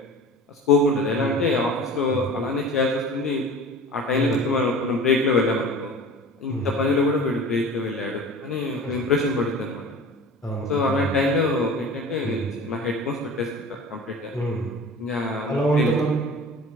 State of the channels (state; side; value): normal; both; correlation 0.39